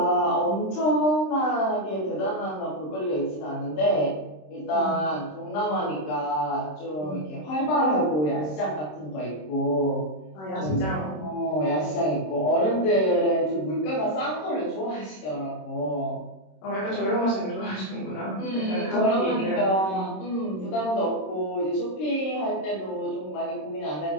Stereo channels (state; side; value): late; right; 26 ms